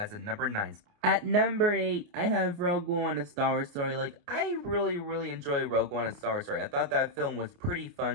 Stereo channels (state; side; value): late; left; 28 ms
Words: a number 9. At number 8, I have Rogue One, A Star Wars Story. Like, I really enjoy Rogue One, A Star Wars Story. I thought that film was pretty